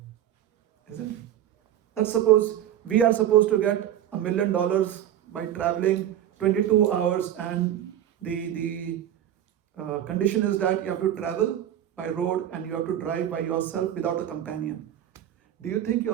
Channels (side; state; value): left; quieter; 11.1 dB